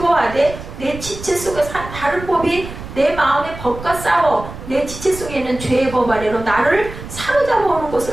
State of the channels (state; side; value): noise; right; rumble, 12 dB below the sound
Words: 내 지체 속에서 한 다른 법이 내 마음의 법과 싸워 내 지체 속에 있는 죄의 법 아래로 나를 사로잡아 오는